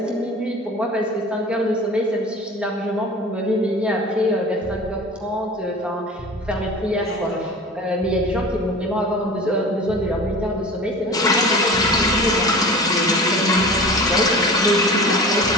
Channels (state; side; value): normal; both; correlation 0.37